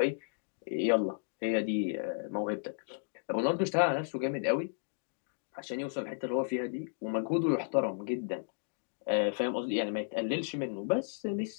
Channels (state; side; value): silent; right; digital silence